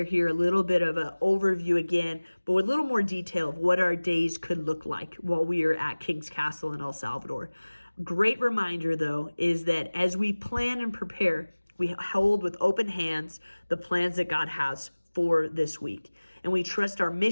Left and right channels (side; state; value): both; inverted; correlation -1.00